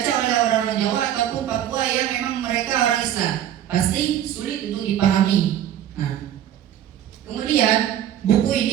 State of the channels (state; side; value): quieter; left; 11.0 dB